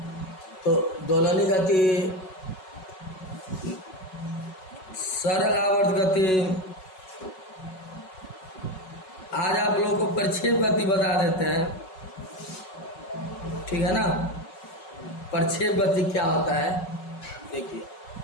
तो दोलनी गति, सरल आवर्त गति, आज आप लोगों को प्रक्षेप गति बता देते हैं, ठीक है ना। प्रक्षेप गति क्या होता है देखिए।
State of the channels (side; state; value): right; late; 5.4 ms